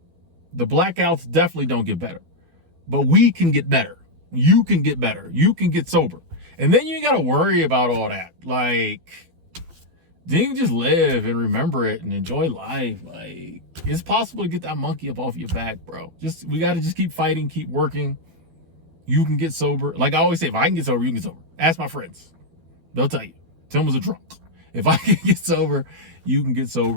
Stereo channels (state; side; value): late; left; 12 ms